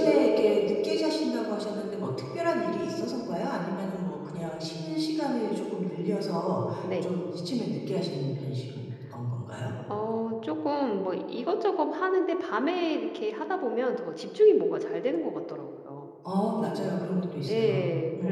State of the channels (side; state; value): both; identical; correlation 1.00